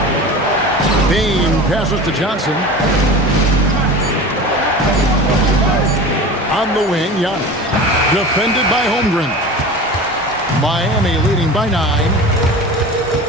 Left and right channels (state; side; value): normal; both; correlation 0.34